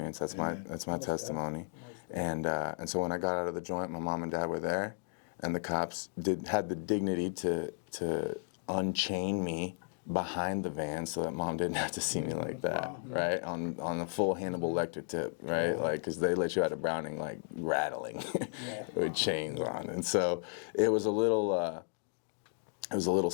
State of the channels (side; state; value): right; silent; 55 dB below the other